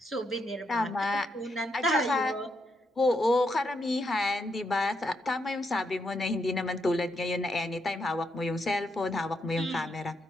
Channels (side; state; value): both; normal; correlation 0.79